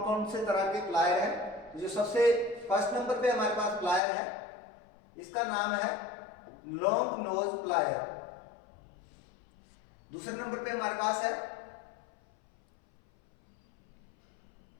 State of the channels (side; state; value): right; drops out; at 4.0 s